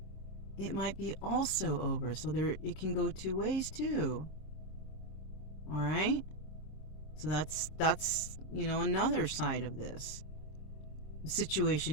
it might be also over. So it can go two ways too. All right? So that's another side of this. The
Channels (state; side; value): late; right; 26 ms